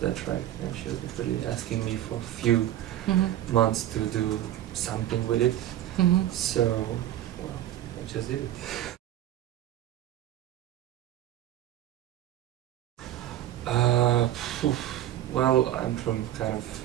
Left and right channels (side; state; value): left; quieter; 12.7 dB